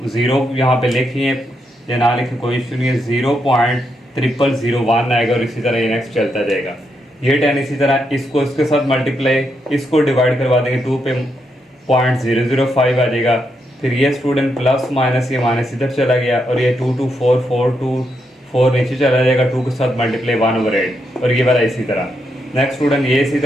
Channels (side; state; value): both; normal; correlation 0.81